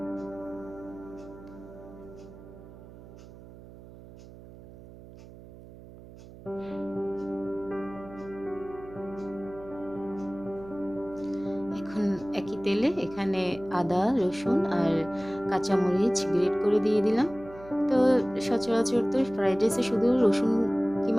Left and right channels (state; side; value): noise; right; hum, 18 dB below the sound